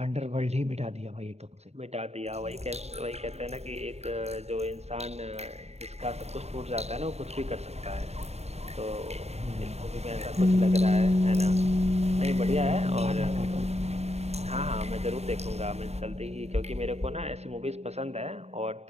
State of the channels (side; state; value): left; late; 0.31 ms